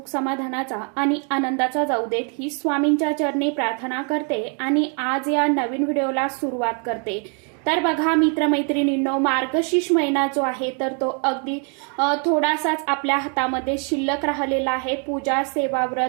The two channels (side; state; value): left; quieter; 39.9 dB